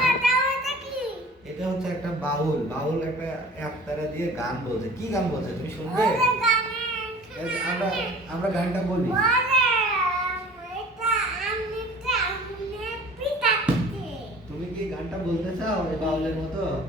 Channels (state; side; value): normal; both; correlation 0.45